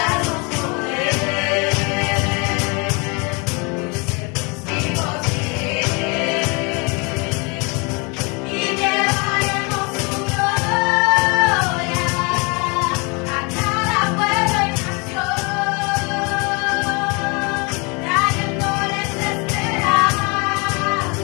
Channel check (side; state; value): right; quieter; 30.5 dB